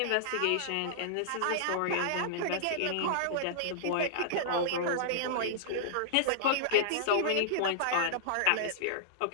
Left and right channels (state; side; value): different; both; correlation -0.02